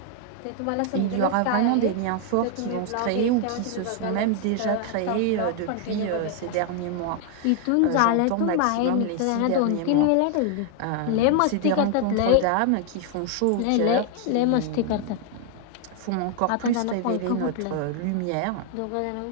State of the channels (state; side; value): different; both; correlation 0.00